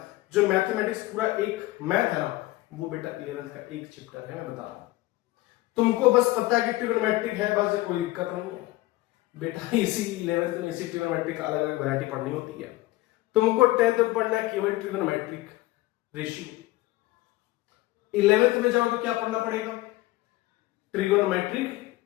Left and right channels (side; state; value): right; quieter; 18.7 dB